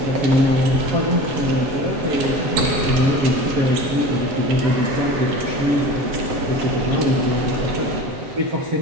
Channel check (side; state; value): left; late; 7.9 ms